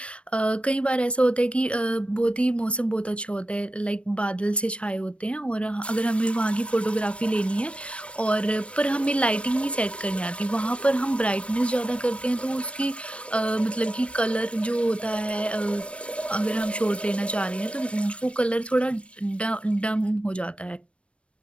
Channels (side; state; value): right; late; 0.060 ms